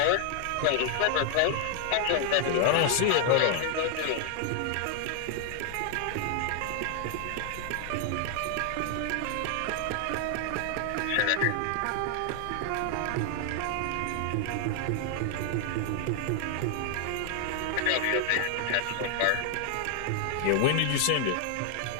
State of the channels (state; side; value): different; both; correlation 0.00